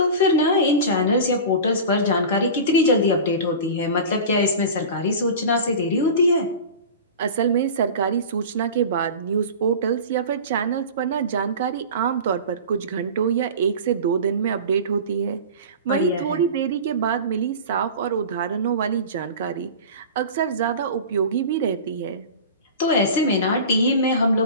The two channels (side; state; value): both; inverted; correlation -0.33